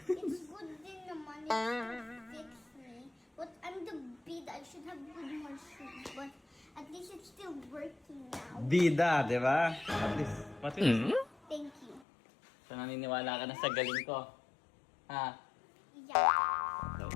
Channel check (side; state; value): right; drops out; at 12.1 s